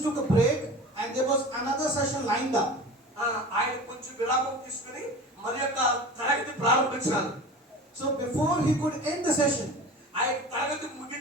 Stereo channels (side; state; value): both; normal; correlation 0.35